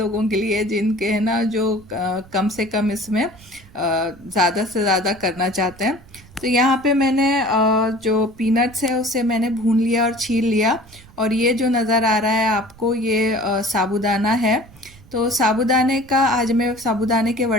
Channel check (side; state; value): right; noise; rumble, 24 dB below the sound